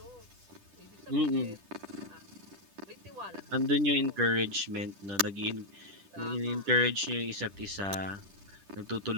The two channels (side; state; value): left; late; 10 ms